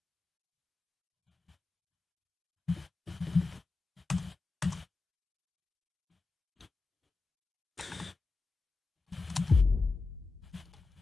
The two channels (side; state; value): right; quieter; 3.8 dB